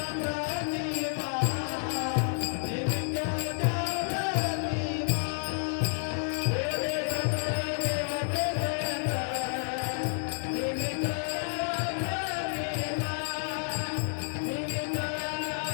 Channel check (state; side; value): silent; right; digital silence